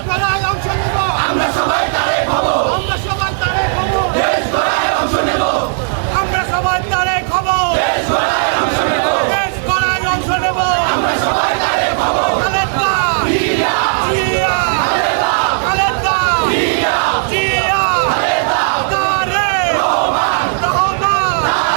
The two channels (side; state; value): left; silent; digital silence